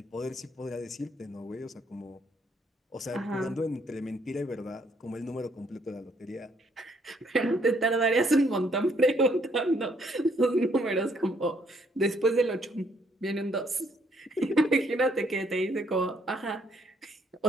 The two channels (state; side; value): normal; both; correlation 0.68